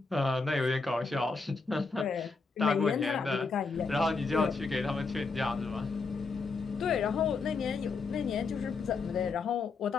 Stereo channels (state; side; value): quieter; right; 4.3 dB